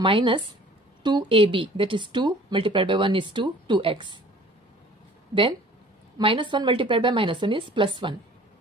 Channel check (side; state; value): both; normal; correlation 0.49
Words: 2ab, that is 2 multiplied by 1 is 2, 2x. Then minus 1 multiplied by minus 1 is plus 1.